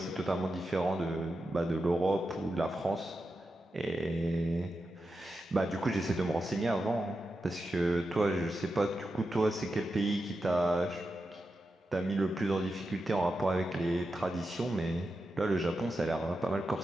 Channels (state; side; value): normal; both; correlation 0.89